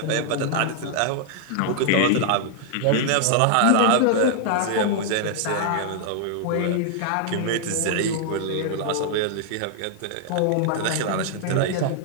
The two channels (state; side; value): different; both; correlation 0.00